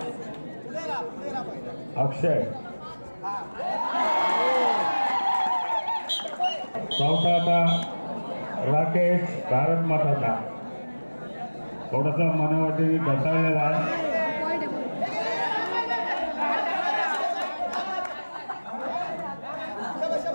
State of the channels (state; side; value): inverted; both; correlation -1.00